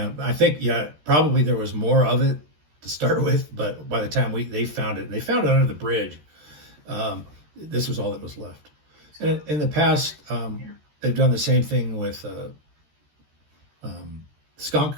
I think, probably there was more of it to start with, but by the time they found it, and they found it under the bridge, this was all that was left. And in the past, they've done the same thing with skunk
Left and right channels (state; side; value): late; left; 13 ms